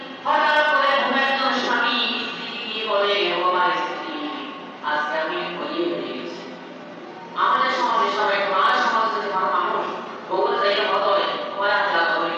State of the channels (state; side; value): identical; both; correlation 1.00